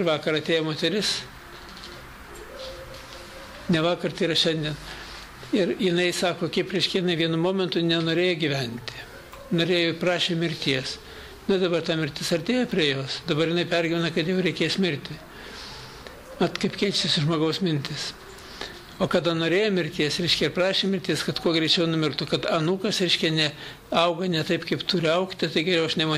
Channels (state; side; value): identical; both; correlation 1.00